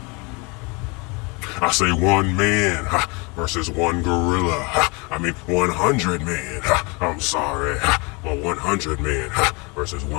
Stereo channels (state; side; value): quieter; right; 29.2 dB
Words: I say one man versus one gorilla. I mean 100 men. I'm sorry. But 100 men versus